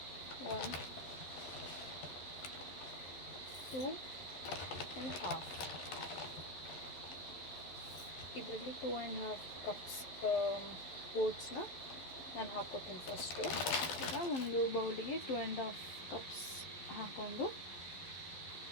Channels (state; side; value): late; right; 11 ms